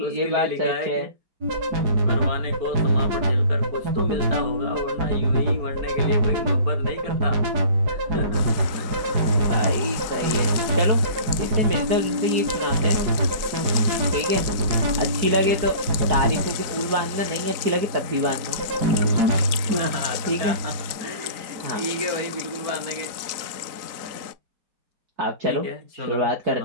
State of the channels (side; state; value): left; late; 4.0 ms